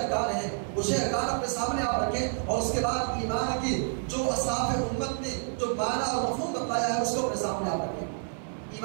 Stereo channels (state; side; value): silent; left; 59 dB below the other